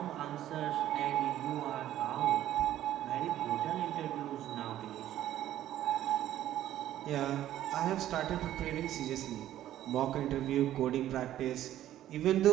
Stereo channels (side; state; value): left; quieter; 12.7 dB